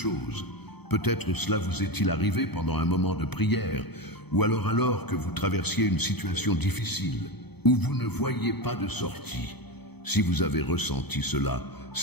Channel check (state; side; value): late; right; 0.98 ms